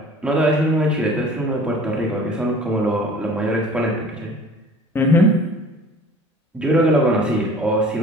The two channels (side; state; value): both; normal; correlation 0.47